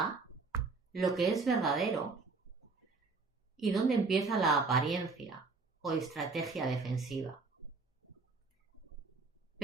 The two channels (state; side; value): quieter; left; 4.2 dB